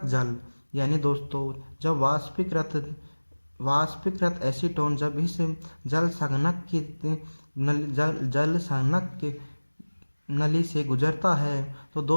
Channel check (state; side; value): inverted; both; correlation -1.00